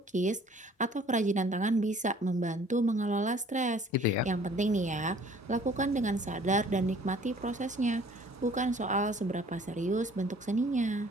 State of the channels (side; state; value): both; normal; correlation 0.54